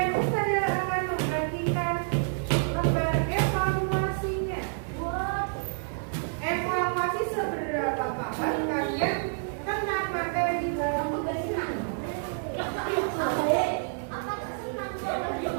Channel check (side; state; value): left; silent; digital silence